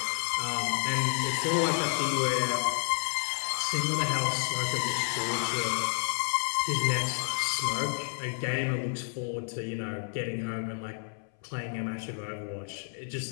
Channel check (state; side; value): silent; right; 58 dB below the other